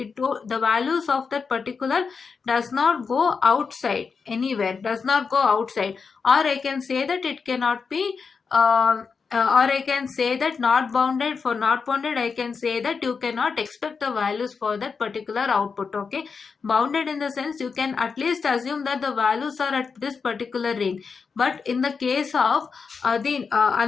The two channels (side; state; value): right; quieter; 5.3 dB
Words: values of that particular does not go outside anywhere, does not go outside. Or I can say that it cannot be or I can say that not bounded. For not bounded, I can say that you cannot expect the values for that particular output. Okay, bounded in the sense you can at least assume that the values are at this particular range. But in the case of the